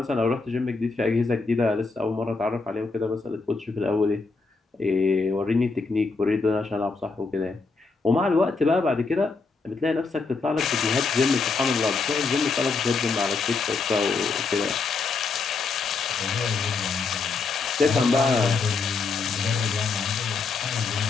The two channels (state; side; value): quieter; right; 4.3 dB